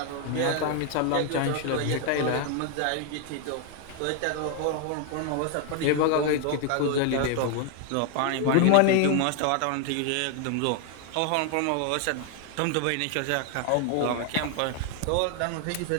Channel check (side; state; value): both; different; correlation 0.00